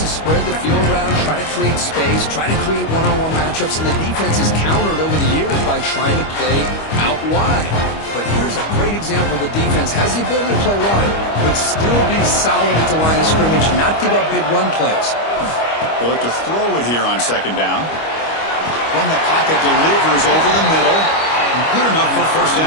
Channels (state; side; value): late; right; 25 ms